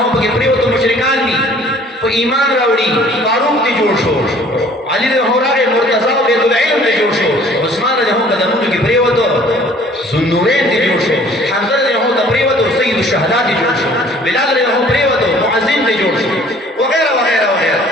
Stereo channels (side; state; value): both; normal; correlation 0.54